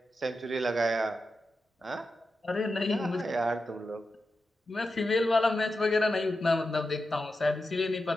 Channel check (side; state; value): both; normal; correlation 0.90